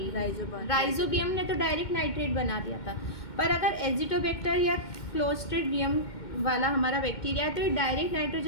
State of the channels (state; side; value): late; right; 2.2 ms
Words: rhizobium ने तो direct nitrate बना दिया था, पर अगर एजिटोबैक्टर या क्लोस्ट्रिडियम वाला हमारा बैक्टीरिया है तो ये डायरेक्ट